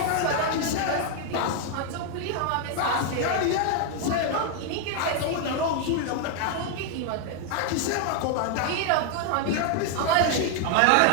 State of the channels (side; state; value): both; different; correlation 0.00